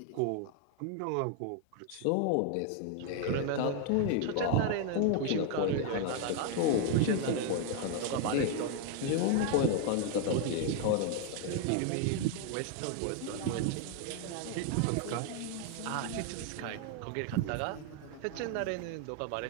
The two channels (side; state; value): both; different; correlation 0.01